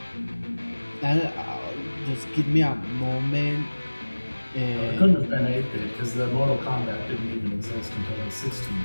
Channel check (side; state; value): both; inverted; correlation -1.00